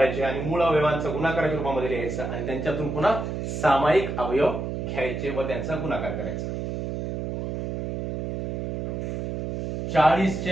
आणि मूळ अवयवांचा गुणाकाराच्या रूपामध्ये लिहायचं आणि त्यांच्यातून पुन्हा सामायिक अवयव घ्यायचे व त्यांचा गुणाकार करायचा. 40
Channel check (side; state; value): right; noise; hum, 4 dB below the sound